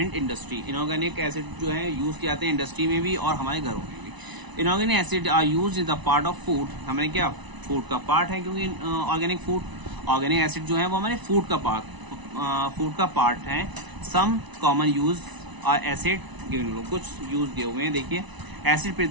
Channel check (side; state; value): left; late; 1.0 ms